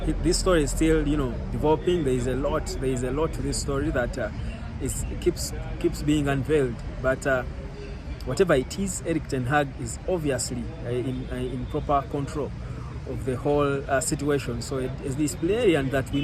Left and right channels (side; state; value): both; identical; correlation 1.00